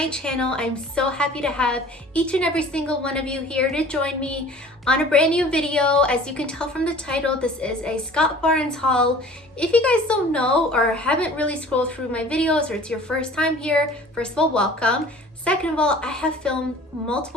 channel. I'm so happy to have each and every single one of you here to join me on a brand new video. As you can tell from the title, this is a Scott Barnes haul. If you guys don't know or haven't really scrolled through my videos, or it's your first time here, first of all, welcome. Second of all, I have filmed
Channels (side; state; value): both; normal; correlation 0.46